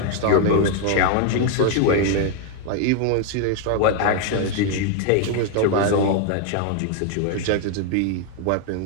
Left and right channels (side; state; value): both; different; correlation 0.00